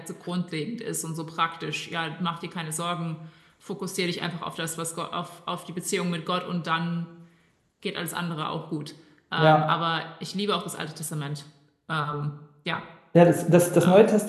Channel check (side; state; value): both; identical; correlation 1.00